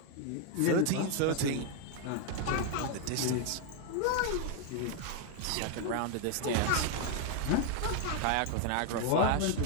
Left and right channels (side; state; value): both; different; correlation 0.00